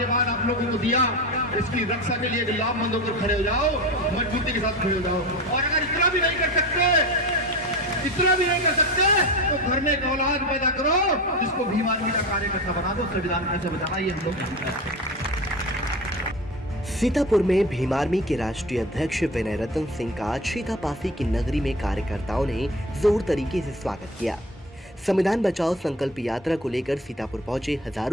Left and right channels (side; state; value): both; normal; correlation 0.30